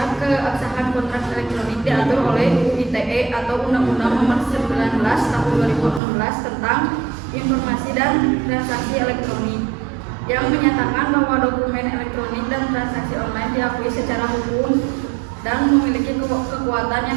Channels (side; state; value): left; drops out; at 6.0 s